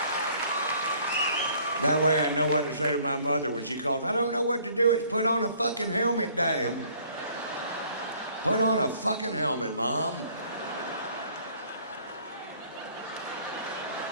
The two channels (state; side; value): inverted; both; correlation -0.58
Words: That way I know what to say to my mother when she calls. I don't know what to do. It's put on a fucking helmet, damn. Put on a fucking helmet, Mom.